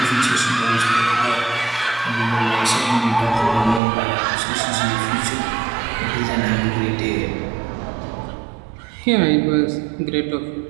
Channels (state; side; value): drops out; left; at 3.8 s